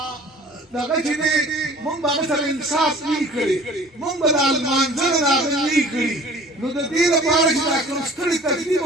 دغه چې دی مونږ به هغه سره انصاف نه وي کړی مونږ به د لمانځنه د هغه نه وي کړي نو د دې لپاره چې دا کوم ستړی تکلیف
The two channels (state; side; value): normal; both; correlation 0.47